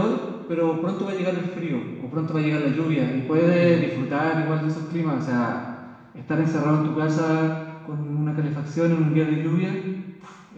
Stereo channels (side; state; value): both; identical; correlation 1.00